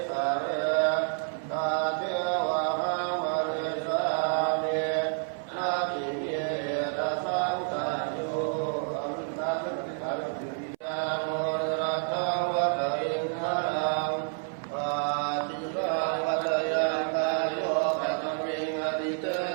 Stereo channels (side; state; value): left; silent; 59 dB below the other